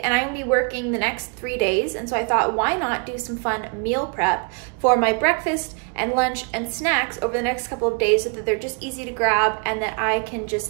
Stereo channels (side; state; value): left; quieter; 36.2 dB